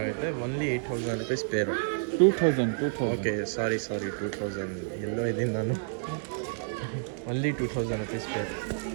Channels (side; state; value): left; silent; digital silence